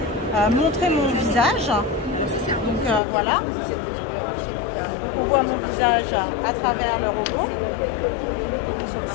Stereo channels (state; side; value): drops out; right; at 3.0 s